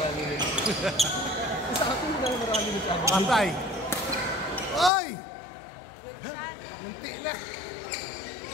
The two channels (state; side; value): drops out; right; at 4.9 s